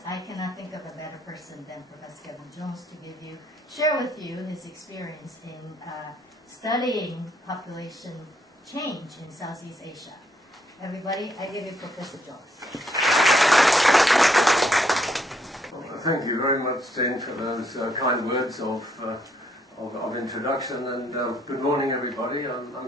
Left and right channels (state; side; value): normal; both; correlation 0.72